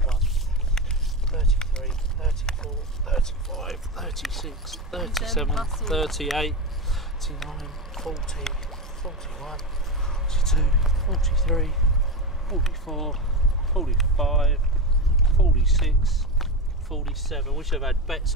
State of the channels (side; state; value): both; normal; correlation 0.19